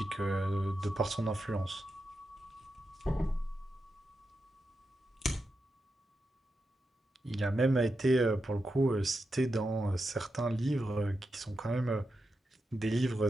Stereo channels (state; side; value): normal; both; correlation 0.88